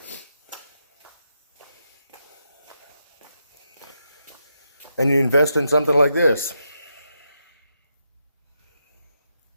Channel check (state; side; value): inverted; both; correlation -0.83